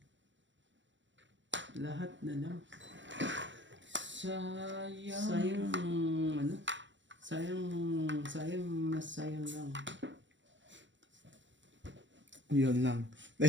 Lahat na lang. Sayang. Sayang, ano? Sayang lang. yun lang.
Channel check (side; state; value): left; late; 0.54 ms